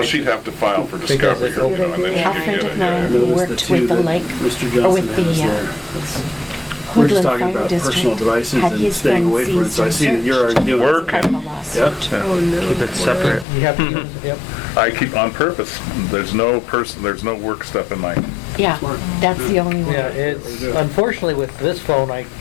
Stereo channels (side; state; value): right; drops out; at 13.5 s